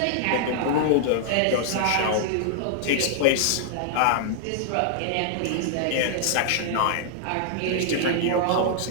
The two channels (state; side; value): different; both; correlation -0.01